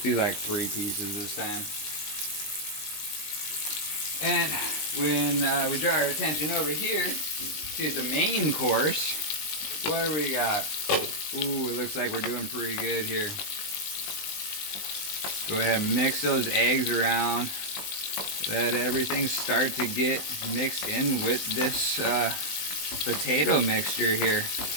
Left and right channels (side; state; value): right; late; 20 ms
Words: do like 3 pieces this time. And when we draw our attention over here to the main course, what do we got? Ooh, it looks like we're doing pretty good here. Go ahead and mix those eggs around. Let everything start to get mixed in with this potato mixture here.